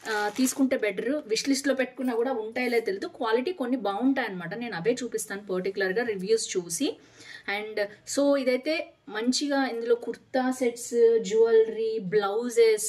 తీసుకుంటే బెటర్. విష్ లిస్ట్లో పెట్టుకున్నా కూడా ఉంటాయో తెలియదు. క్వాలిటీ కొన్ని బాగుంటాయి అనమాట. నేను అవే చూపిస్తాను పర్టికులర్గా రివ్యూస్ చూసి. అండ్ సో ఇదైతే మంచిగా ఇందులో kurta sets, jewellery, blouses,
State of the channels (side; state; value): both; identical; correlation 1.00